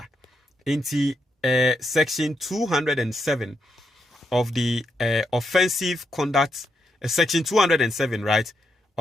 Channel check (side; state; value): both; normal; correlation 0.80